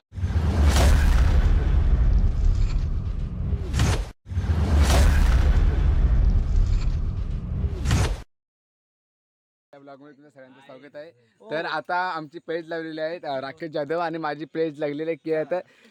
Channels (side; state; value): both; identical; correlation 1.00